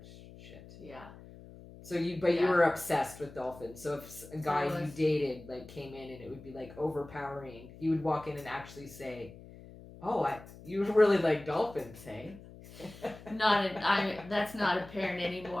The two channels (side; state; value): left; noise; hum, 18 dB below the sound